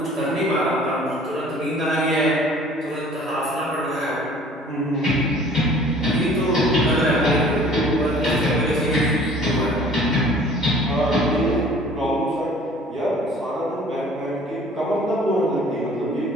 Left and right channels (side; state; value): both; normal; correlation 0.51